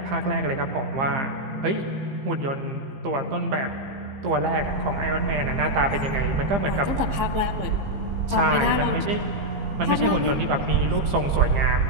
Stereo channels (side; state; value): left; late; 15 ms